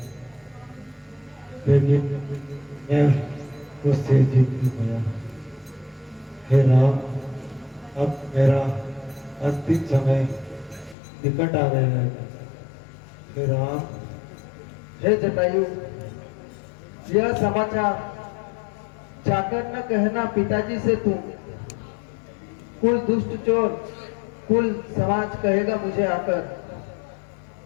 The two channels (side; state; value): right; drops out; at 11.0 s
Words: लेकिन मैं उससे जीत नहीं पाया। हे राम, अब मेरा अंतिम समय निकट आ गया है। हे राम, हे जटायु, यह समाचार जाकर न कहना पिताजी से तुम, कुल दुष्ट चोर, कुल समाज कहेगा मुझे आकर।